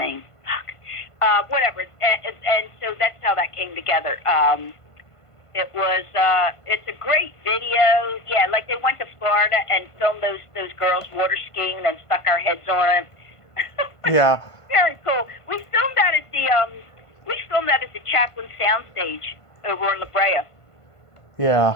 Fuck. Whatever, and so that's how that came together. It was, it's a great video. Yeah, like they went to Florida and filmed those girls water skiing and then stuck our heads on them. Yeah. Very cool. We filmed that at the Chaplin Soundstage over in La Brea. Yeah.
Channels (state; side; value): late; right; 1.5 ms